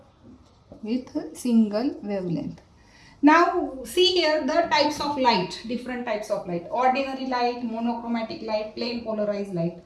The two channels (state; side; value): identical; both; correlation 1.00